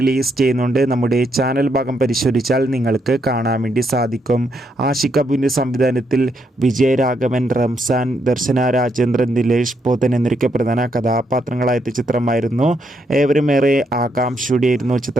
ചെയ്യുന്നുണ്ട്. നമ്മുടെ ചാനൽ ഭാഗം പരിശോധിച്ചാൽ നിങ്ങൾക്ക് കാണാൻ വേണ്ടി സാധിക്കും. ആഷിഖ് അബുവിൻ്റെ സംവിധാനത്തിൽ വിജയരാഘവൻ, റംസാൻ, ദർശന രാജേന്ദ്രൻ, ദിലേഷ് പോത്തൻ എന്നിവരൊക്കെ പ്രധാന കഥാപാത്രങ്ങളായ ചിത്രമായിരുന്നു. ഏവരും ഏറെ ആകാംക്ഷയോടെയായിരുന്നു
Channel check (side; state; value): both; normal; correlation 0.77